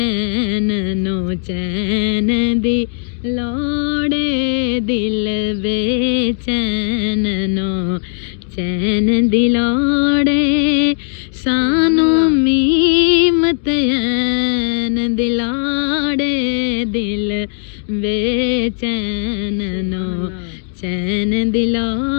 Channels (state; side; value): silent; right; digital silence